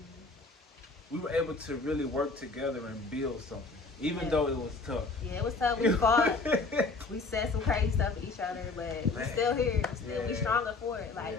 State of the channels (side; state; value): right; quieter; 3.8 dB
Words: we were able to really work together and build something, even though it was tough. Yeah, it was tough. We fought. We said some crazy stuff to each other, but we're still here. We stronger for it.